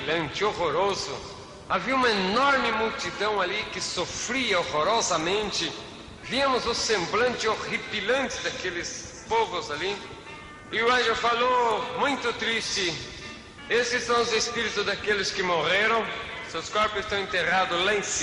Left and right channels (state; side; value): identical; both; correlation 1.00